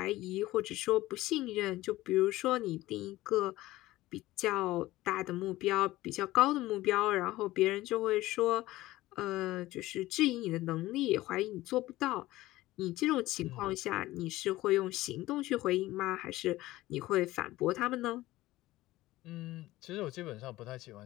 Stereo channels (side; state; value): right; quieter; 17.3 dB